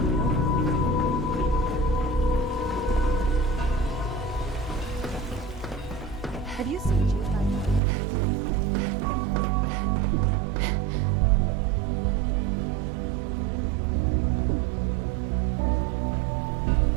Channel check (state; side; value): drops out; left; at 7.8 s